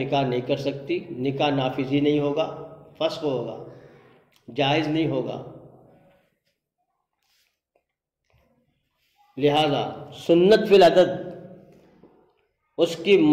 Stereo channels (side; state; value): both; identical; correlation 1.00